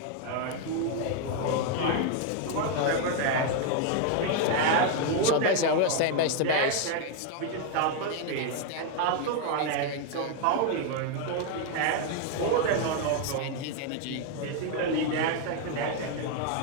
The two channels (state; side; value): different; both; correlation 0.01